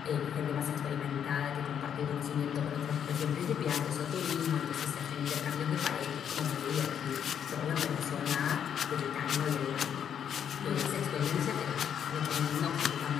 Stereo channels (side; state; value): right; quieter; 8.5 dB